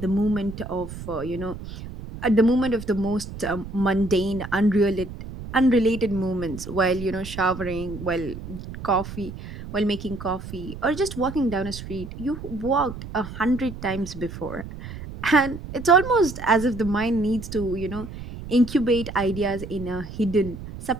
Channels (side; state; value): right; noise; rumble, 11 dB below the sound